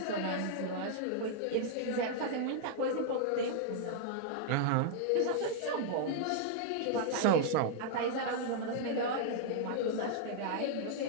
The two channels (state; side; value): different; both; correlation -0.01